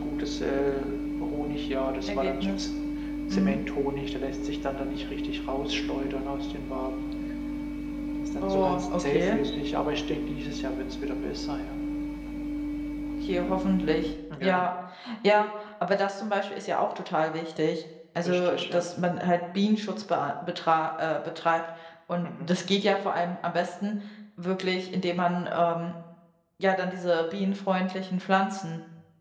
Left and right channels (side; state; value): both; identical; correlation 1.00